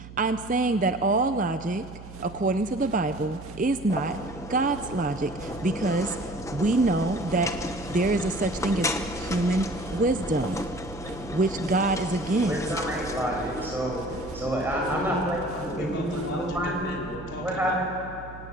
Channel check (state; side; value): noise; right; hum, 15 dB below the sound